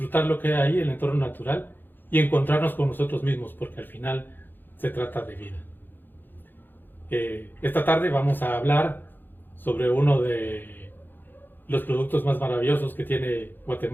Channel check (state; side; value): late; right; 0.093 ms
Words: lo que hay ahí, el entorno natural y encontrarnos con nosotros mismos, porque al final se trata de vida. Esta tarde vamos a hablar sobre uno de los productos más maravillosos que tiene